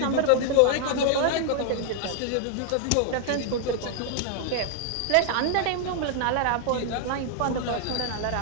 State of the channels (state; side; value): different; both; correlation 0.00